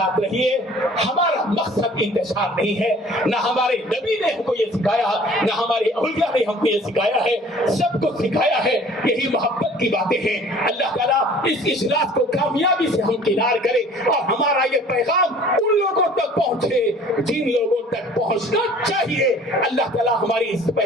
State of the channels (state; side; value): normal; both; correlation 0.50